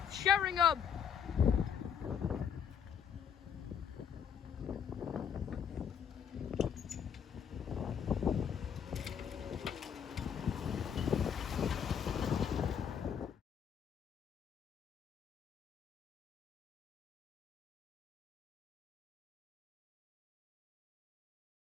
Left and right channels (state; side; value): quieter; right; 7.8 dB